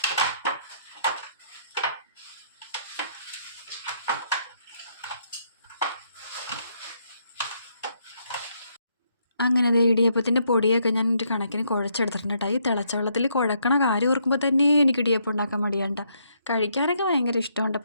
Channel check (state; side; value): inverted; both; correlation -0.73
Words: അങ്ങനെ ഇടിയപ്പത്തിൻ്റെ പൊടിയൊക്കെ ഞാൻ ഒരു കണക്കിന് കുഴച്ചെടുത്തിട്ടുണ്ട് കേട്ടോ. ഈ തിളച്ച വെള്ളത്തിൽ കുഴക്കണ കാര്യം ഓർക്കുമ്പോൾ തന്നെ എനിക്ക് ഇടിയപ്പം ഉണ്ടാക്കാൻ മടിയാണ്ട. കഴിക്കാനൊക്കെ ഭയങ്കര ഇഷ്ടമുണ്ട്,